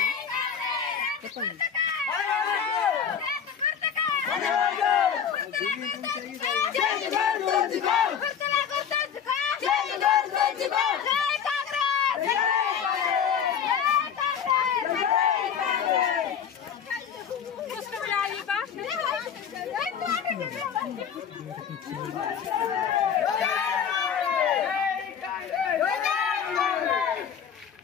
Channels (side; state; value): right; quieter; 7.8 dB